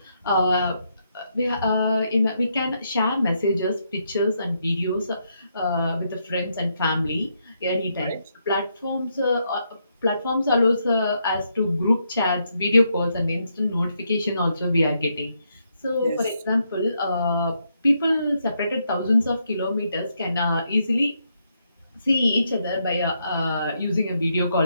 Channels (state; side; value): inverted; both; correlation -0.78